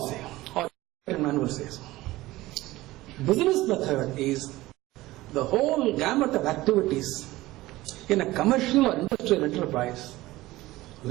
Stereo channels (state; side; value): quieter; left; 18.1 dB